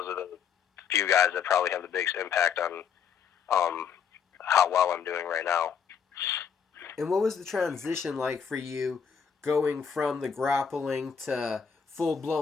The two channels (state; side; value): quieter; right; 6.9 dB